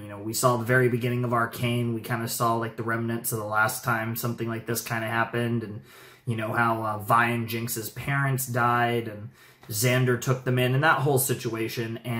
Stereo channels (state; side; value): identical; both; correlation 1.00